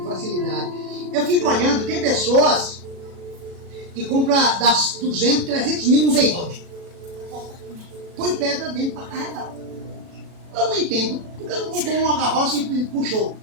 facilidade. Eu fico olhando, tem pessoas que compram das 200, 300 mil no veículo. Põe pedra dentro para carregar. Eu não entendo. Porque não comprou uma carroça e puxou.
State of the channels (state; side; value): late; left; 37 ms